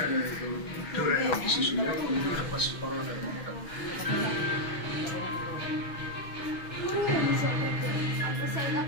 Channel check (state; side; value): late; right; 6.2 ms